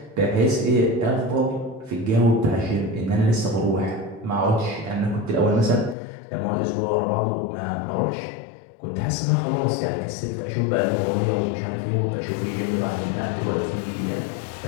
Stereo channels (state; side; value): drops out; right; at 6.0 s